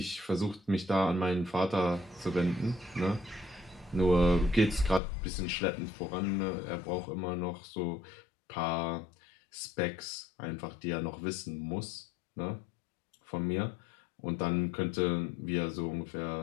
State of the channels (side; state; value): right; drops out; at 5.0 s